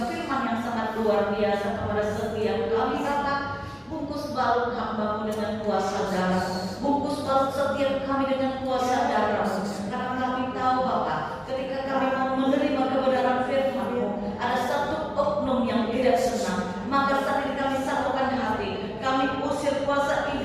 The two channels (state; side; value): identical; both; correlation 1.00